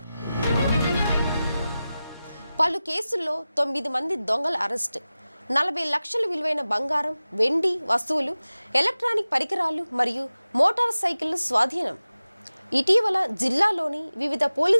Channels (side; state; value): both; inverted; correlation -0.96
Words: పలు కేసుల్లో 9 మంది దొంగల అరెస్ట్, 40 లక్షల విలువైన బంగారం, వెండి వస్తువులు, ఎలక్ట్రానిక్ పరికరాలు మరియు మోటార్ సైకిళ్లు స్వాధీనం. ఇటీవల జిల్లాలోని వివిధ